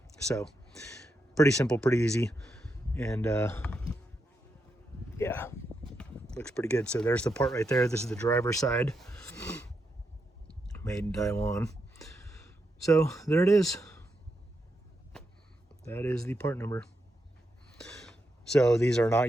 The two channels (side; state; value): both; normal; correlation 0.84